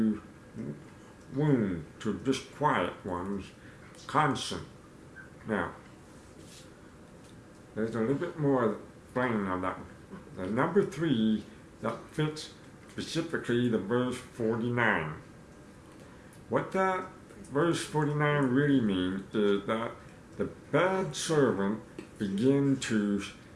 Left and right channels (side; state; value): both; identical; correlation 1.00